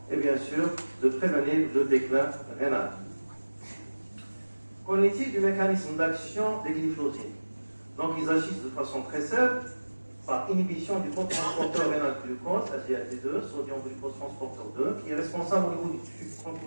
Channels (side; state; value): both; inverted; correlation -1.00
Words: et bien sûr de prévenir le déclin rénal. Qu'en est-il du mécanisme d'action des glyphosines? Donc ils agissent de façon très simple par inhibition du transporteur rénal glucose, SGLT2, sodium glucose transporteur 2, qui est responsable au niveau du tube